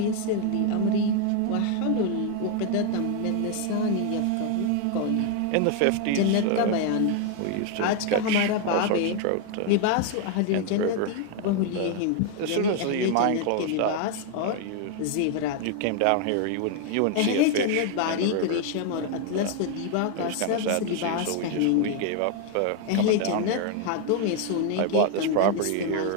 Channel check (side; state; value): both; different; correlation 0.00